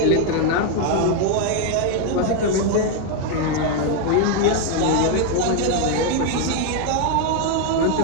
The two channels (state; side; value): different; both; correlation 0.01